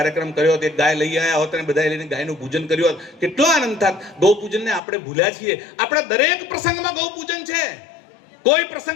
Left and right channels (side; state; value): right; drops out; at 4.8 s